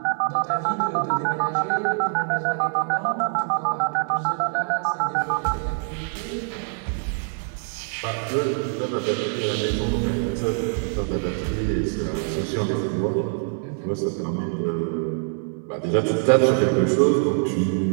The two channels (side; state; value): left; silent; digital silence